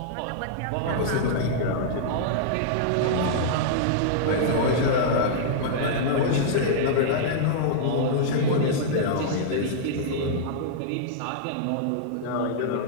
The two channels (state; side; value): different; both; correlation -0.02